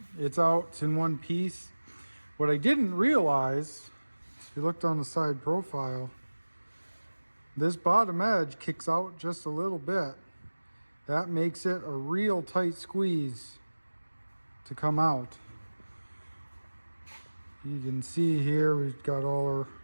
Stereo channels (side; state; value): both; inverted; correlation -1.00